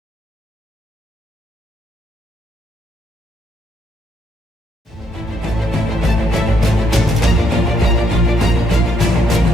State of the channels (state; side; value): normal; both; correlation 0.73